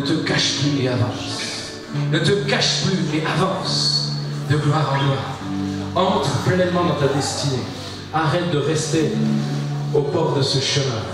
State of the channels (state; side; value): identical; both; correlation 1.00